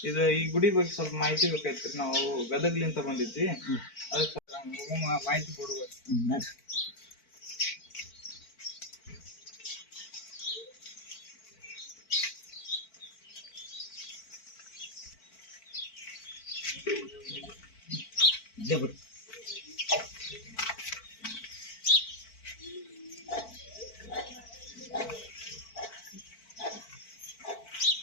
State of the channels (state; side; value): late; right; 4.5 ms